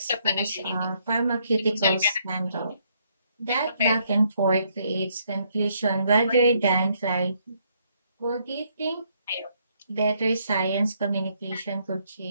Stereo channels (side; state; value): both; inverted; correlation -0.71